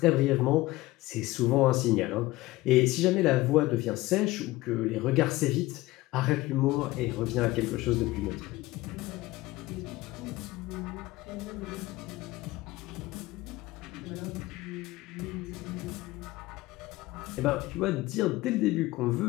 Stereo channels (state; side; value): quieter; right; 18.8 dB